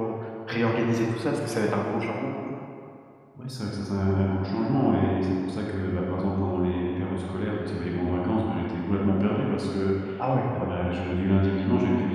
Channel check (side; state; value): both; identical; correlation 1.00